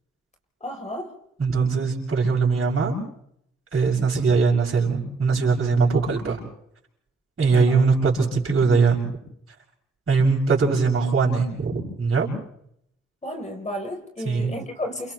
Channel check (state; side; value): quieter; left; 4.1 dB